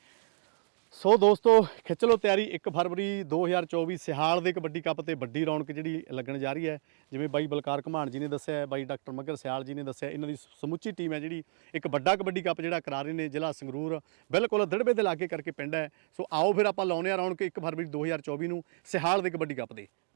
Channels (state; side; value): silent; left; digital silence